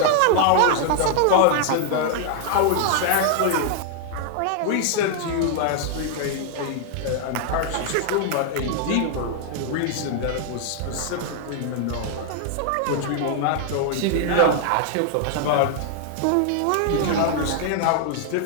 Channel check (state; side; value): different; both; correlation 0.00